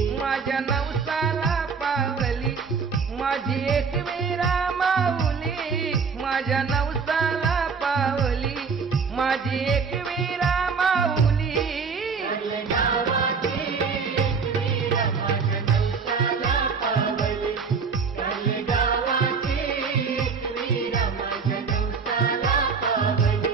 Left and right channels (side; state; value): left; quieter; 5.4 dB